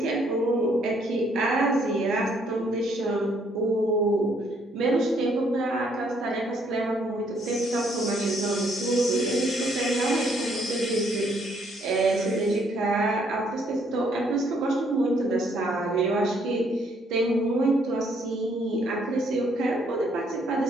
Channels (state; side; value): normal; both; correlation 0.68